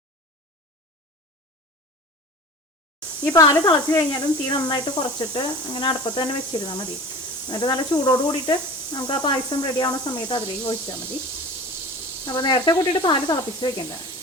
ഈ പാല് തിളച്ച് കഴിഞ്ഞാലും തീ നന്നായിട്ട് കുറച്ചിട്ട് അങ്ങനെ അടുപ്പത്ത് തന്നെ വെച്ചിരുന്നാൽ മതി. എന്നിട്ട് നല്ല ചൂടോട് കൂടിയിട്ട് നമുക്ക് ആ പായസം റെഡി ആവുന്ന സമയത്ത് അതിലേക്ക് ഒഴിച്ചാൽ മതി. അപ്പോൾ നേരത്തെ കൂട്ടിയിട്ട് പാല് തിളപ്പിച്ച് വെക്കേണ്ട.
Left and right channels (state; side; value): normal; both; correlation 0.38